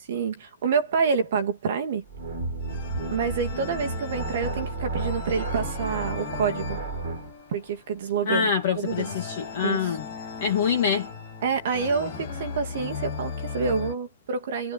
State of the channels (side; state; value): both; inverted; correlation -0.45